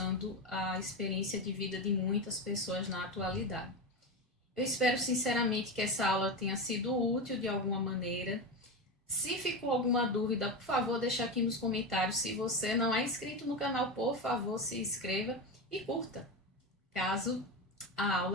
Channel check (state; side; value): normal; both; correlation 0.18